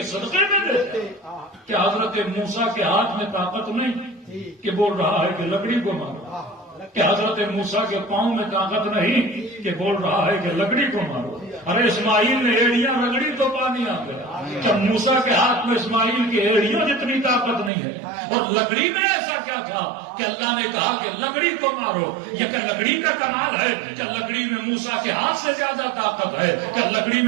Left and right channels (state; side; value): drops out; left; at 17.7 s